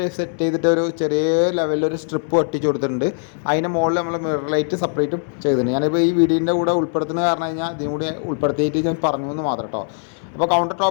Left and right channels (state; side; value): silent; right; 65 dB below the other